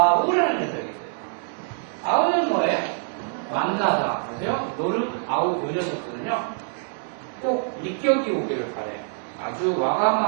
녀석이 있어요. 아우는 뭐예요? 만나다. 그래서요, 노루, 아우 요 녀석들은요 꼭 니격이 오기를 바래요. 아주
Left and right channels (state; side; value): silent; left; digital silence